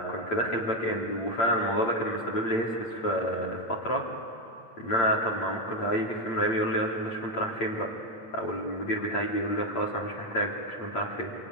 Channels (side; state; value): right; late; 8.8 ms